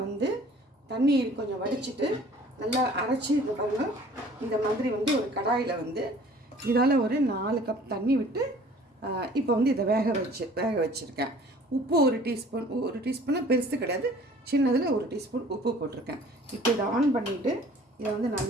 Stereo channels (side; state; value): both; normal; correlation 0.51